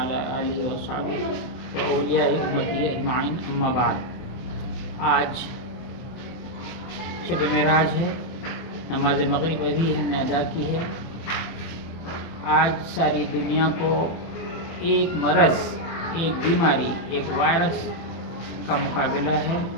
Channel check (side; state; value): right; late; 24 ms